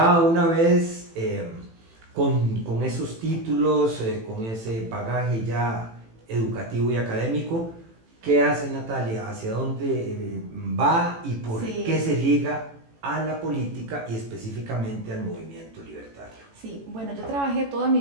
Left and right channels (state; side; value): late; left; 18 ms